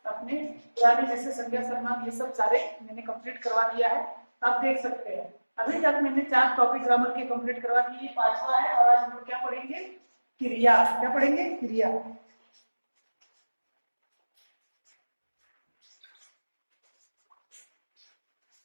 अपने पुराने जैसे संज्ञा शर्मा ये सब सारे मैंने कंप्लीट करवा दिया है, आप देख सकते हैं। अभी तक मैंने 4 टॉपिक ग्रामर के कंप्लीट करवा दिए, 5वां है। और आज हम लोग क्या पढ़ेंगे? क्रिया। क्या पढ़ेंगे? क्रिया।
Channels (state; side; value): inverted; both; correlation -1.00